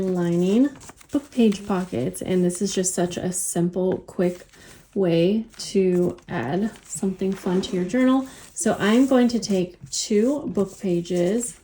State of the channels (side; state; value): both; identical; correlation 1.00